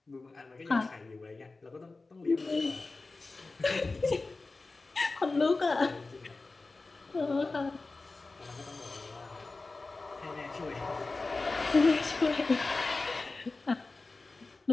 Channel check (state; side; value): quieter; right; 3.5 dB